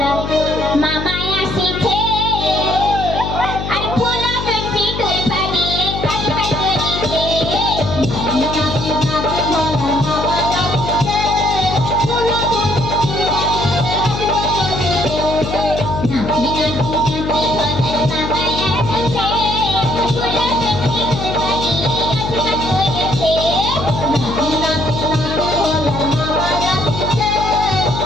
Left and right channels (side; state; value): left; noise; hum, 5 dB below the sound